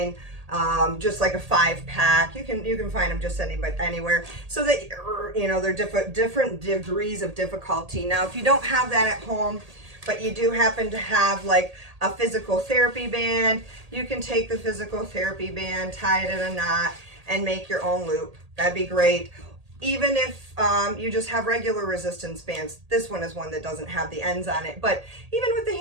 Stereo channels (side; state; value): left; late; 1.8 ms